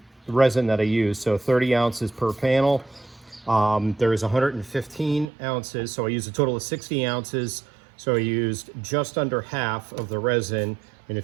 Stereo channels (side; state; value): left; drops out; at 5.3 s